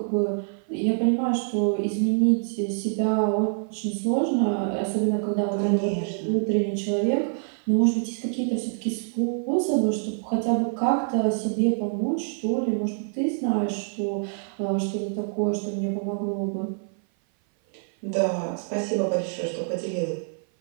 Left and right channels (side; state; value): left; silent; 56 dB below the other